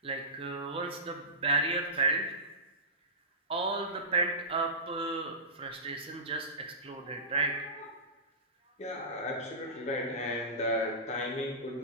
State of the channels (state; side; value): normal; both; correlation -0.19